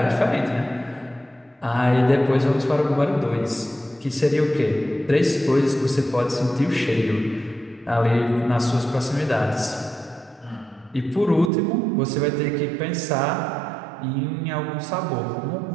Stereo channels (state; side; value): drops out; left; at 11.5 s